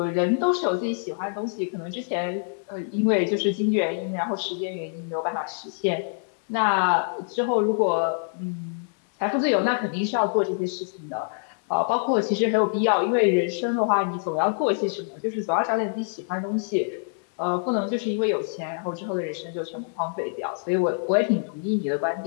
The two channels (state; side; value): silent; right; 61 dB below the other